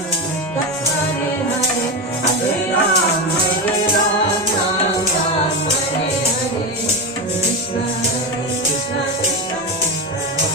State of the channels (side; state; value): both; normal; correlation 0.15